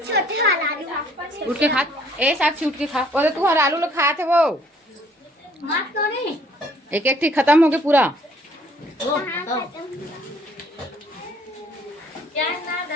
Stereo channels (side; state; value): both; normal; correlation 0.60